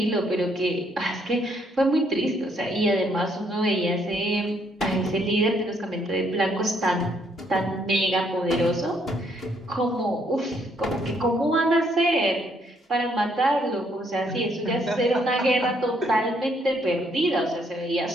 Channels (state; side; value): normal; both; correlation 0.70